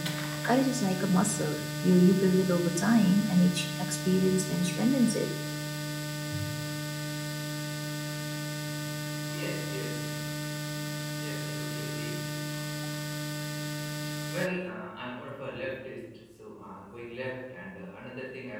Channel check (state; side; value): identical; both; correlation 1.00